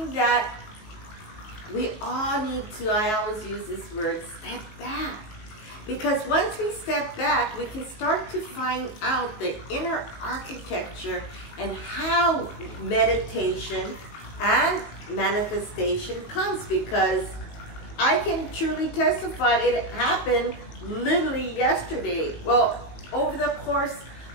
that we all need to, I always use this word, step back. Because once we step back, we can start to find out the inner architecture and how meditation and manifestation comes. Because I can truly testify it happened literally yesterday. Well, over the course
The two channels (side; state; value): right; late; 19 ms